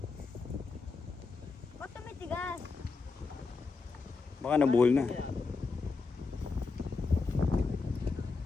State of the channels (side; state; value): right; quieter; 4.4 dB